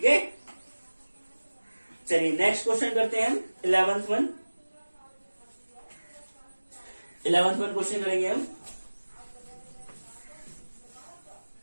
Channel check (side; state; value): both; inverted; correlation -1.00